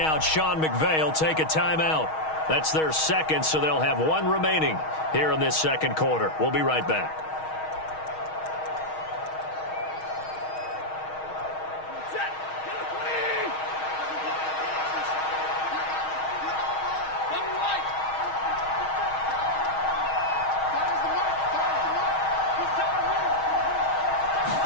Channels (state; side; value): late; right; 6.4 ms